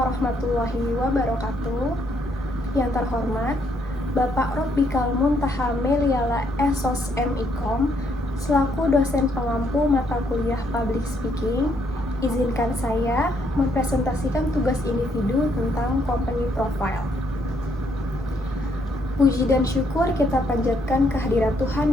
wabarakatuh. Yang terhormat, Bapak Robbikal Muntaha Meliala Esos MIkom, selaku dosen pengampu mata kuliah Public Speaking, izinkan saya mempresentasikan tugas individu tentang Company Profile. Puji dan syukur kita panjatkan kehadirat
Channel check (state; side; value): normal; both; correlation 0.71